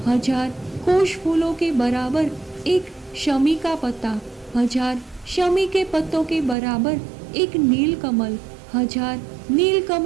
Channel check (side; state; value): left; drops out; at 6.6 s